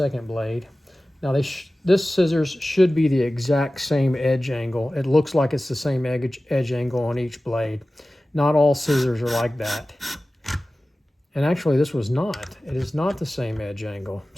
blade. Now this scissors should be the exact same edge angle. It looks like it's the same edge angle on each blade. Not all scissors are like that. And actually this was not. It is not the same edge angle.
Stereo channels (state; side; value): normal; both; correlation 0.96